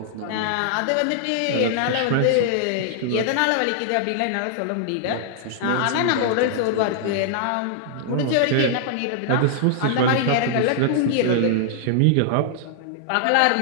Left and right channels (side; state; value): both; different; correlation -0.01